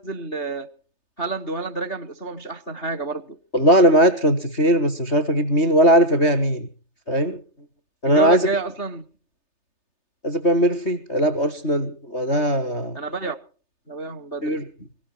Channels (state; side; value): late; right; 3.3 ms